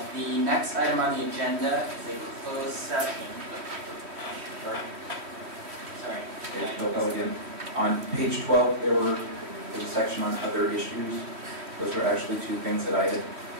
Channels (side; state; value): left; late; 3.1 ms